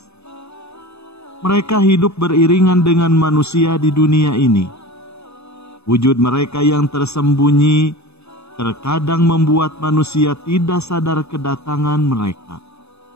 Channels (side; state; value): right; late; 0.80 ms